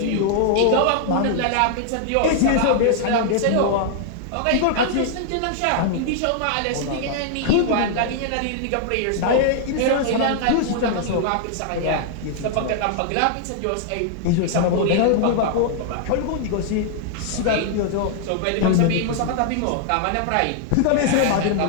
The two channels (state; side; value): different; both; correlation -0.01